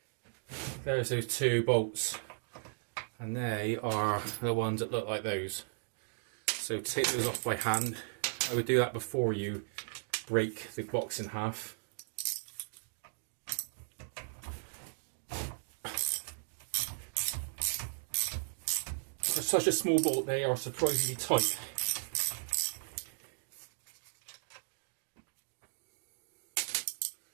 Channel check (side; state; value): left; silent; digital silence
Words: there's those two bolts, and they are the ones that look like those. So take those off by hand. I would do that before you break the box in half. For such a small bolt, they are surprisingly tight.